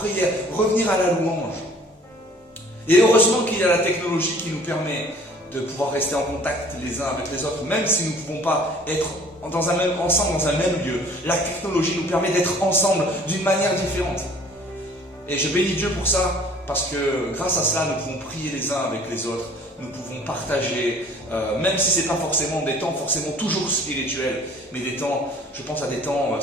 revenir à la louange. Et heureusement qu'il y a la technologie qui nous permet de pouvoir rester en contact les uns avec les autres, même si nous ne pouvons pas être ensemble dans un même lieu. La technologie nous permet d'être ensemble d'une manière différente. Et je bénis Dieu pour ça, parce que grâce à cela, nous pouvons prier les uns avec les autres, nous pouvons partager, même si ce n'est pas forcément des temps forcément toujours spirituels, mais des temps, je pense à des temps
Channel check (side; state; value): both; normal; correlation 0.52